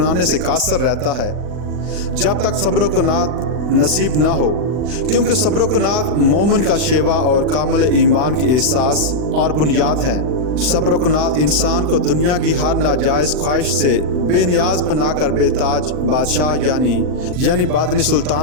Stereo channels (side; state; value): left; late; 40 ms